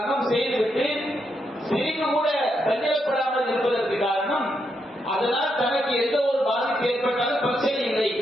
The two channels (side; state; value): both; normal; correlation 0.81